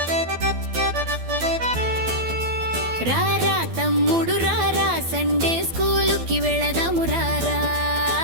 రారా తమ్ముడు రారా సండే స్కూలుకి వెళదాము రారా.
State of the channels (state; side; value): late; left; 12 ms